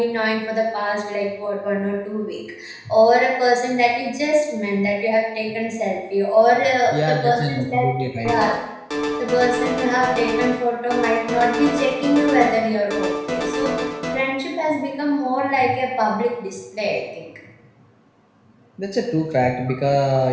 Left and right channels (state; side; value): identical; both; correlation 1.00